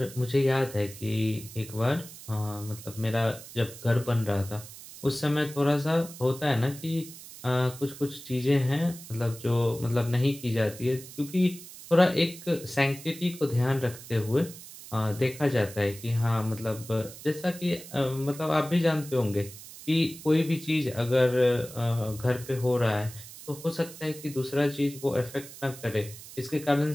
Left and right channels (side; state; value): right; noise; hiss, 15 dB below the sound